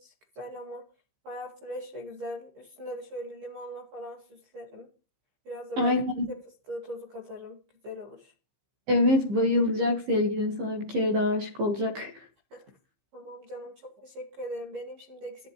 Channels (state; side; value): late; left; 15 ms